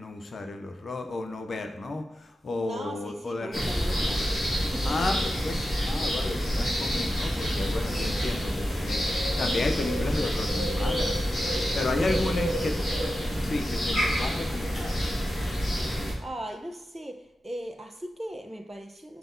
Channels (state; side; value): normal; both; correlation 0.91